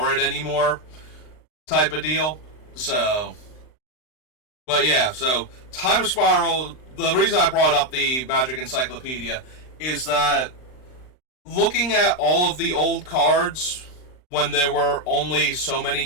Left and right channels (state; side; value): late; right; 39 ms